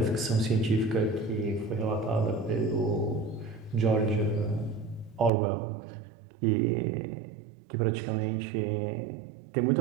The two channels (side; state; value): left; drops out; at 5.3 s